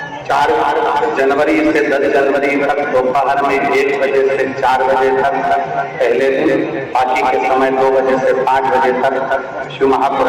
4 जनवरी से 10 जनवरी तक दोपहर में 1 बजे से 4 बजे तक पहले दिन, बाकी के समय 2 बजे से 5 बजे तक शिव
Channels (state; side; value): identical; both; correlation 1.00